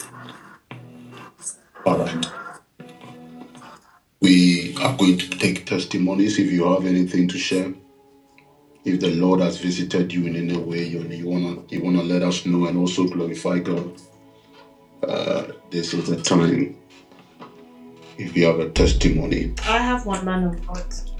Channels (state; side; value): identical; both; correlation 1.00